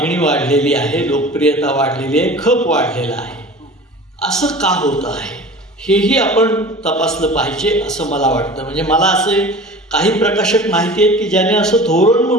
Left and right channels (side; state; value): both; normal; correlation 0.39